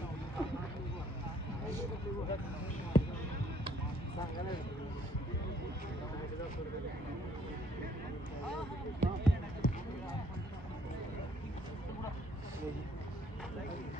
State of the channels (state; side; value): normal; both; correlation 0.65